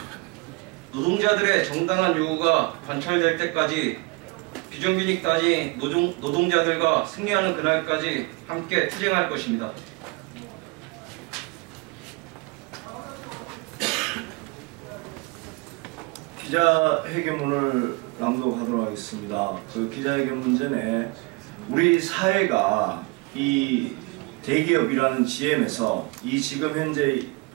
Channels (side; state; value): left; quieter; 26.4 dB